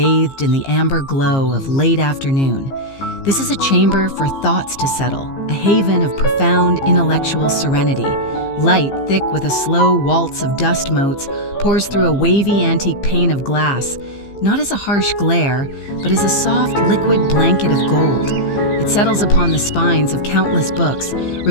in the amber glow of late afternoon. This is a chamber for thoughts to settle, a haven of profound intellectual serenity. Light, thick with a slow waltz of dust motes, pours through a wavy antique pane of glass, not as a harsh glare, but as a soft, liquid blanket of gold. It settles upon the spines of countless books,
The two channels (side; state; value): right; late; 15 ms